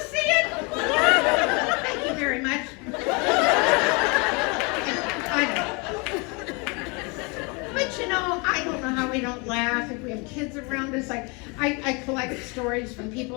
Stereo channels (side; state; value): right; quieter; 30.2 dB